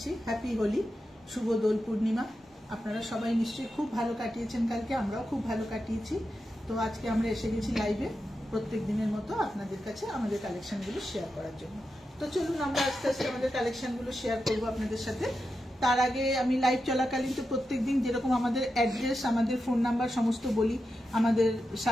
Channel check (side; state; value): both; normal; correlation 0.89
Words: হ্যাপি হোলি, শুভ দোল পূর্ণিমা। আপনারা সবাই নিশ্চয়ই খুব ভালো কাটিয়েছেন, কালকে আমরাও খুব ভালো কাটিয়েছি। তো আজকে আমরা এসে গেছি লাইভে প্রত্যেক দিনের মতো আপনাদের কাছে আমাদের কালেকশনগুলো শেয়ার করার জন্য। তো চলুন আমরা আস্তে আস্তে আমাদের কালেকশনগুলো শেয়ার করবো আপনাদের সাথে। তার আগে আমি লাইভ চলাকালীন তো প্রত্যেকদিন যেরকম আমাদের অ্যাড্রেস, আমাদের ফোন নাম্বার সমস্ত বলি, আমাদের